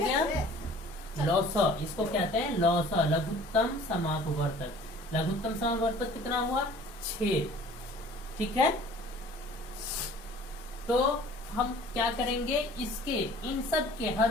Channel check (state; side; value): normal; both; correlation 0.49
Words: लौसा, इसको कहते हैं लौसा, लघुत्तम समापवर्तक। लघुत्तम समापवर्तक कितना हुआ? 6। ठीक है, तो हम क्या करेंगे, इसके इन सब के